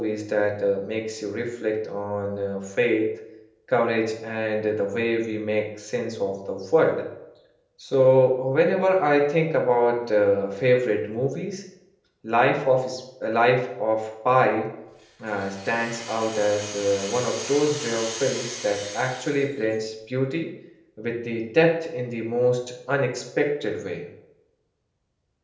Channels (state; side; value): identical; both; correlation 1.00